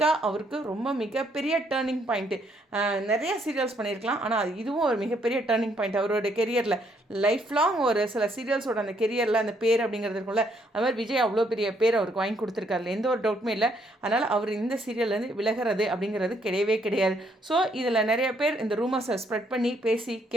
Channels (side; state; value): both; normal; correlation 0.71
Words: அவருக்கு ரொம்ப மிகப்பெரிய டேர்னிங் பாயிண்ட்டு. நிறைய சீரியல்ஸ் பண்ணியிருக்கலாம், ஆனால் இதுவும் ஒரு மிகப்பெரிய டேர்னிங் பாயிண்ட் அவரோட கெரியரில். லைஃப் லாங் ஒரு சில சீரியல்ஸோட அந்த கெரியரில் அந்த பேர் அப்படிங்கிறது இருக்கும்ல, அது மாதிரி விஜய் அவ்வளோ பெரிய பேர் அவருக்கு வாங்கி கொடுத்துருக்காருல, எந்த ஒரு டவுட்டுமே இல்லை. அதனால் அவர் இந்த சீரியல்லேருந்து விலகிறது அப்படிங்கிறது கிடையவே கிடையாது. ஸோ இதில் நிறைய பேர் இந்த ரூமர்ஸை ஸ்ப்ரெட் பண்ணி பேசி